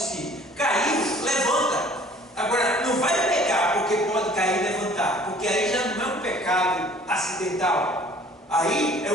Caiu, levanta. Agora, não vai pecar porque pode cair e levantar, porque aí já não é um pecado acidental. Aí é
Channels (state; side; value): normal; both; correlation 0.52